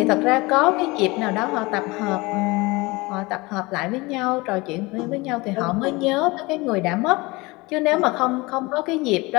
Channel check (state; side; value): quieter; right; 23.4 dB